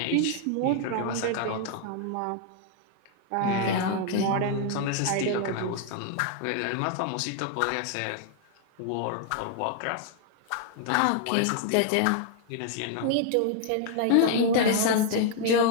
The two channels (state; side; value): different; both; correlation 0.00